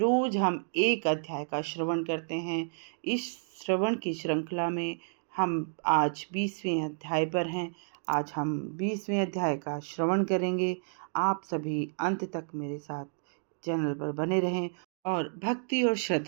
हम एक अध्याय का श्रवण करते हैं। इस श्रवण की श्रृंखला में हम आज 20वें अध्याय पर हैं। आज हम 20वें अध्याय का श्रवण करेंगे। आप सभी अंत तक मेरे साथ चैनल पर बने रहें और भक्ति और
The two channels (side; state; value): left; silent; digital silence